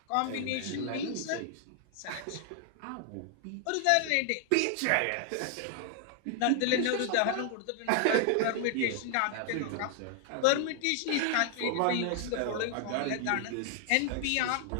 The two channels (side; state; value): both; different; correlation 0.00